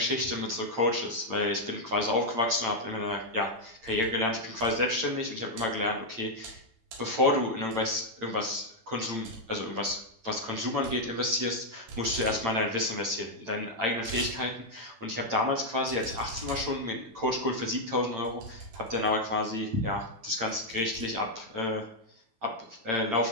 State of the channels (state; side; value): late; left; 8.9 ms